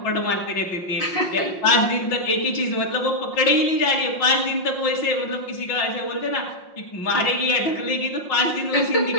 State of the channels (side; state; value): right; late; 5.6 ms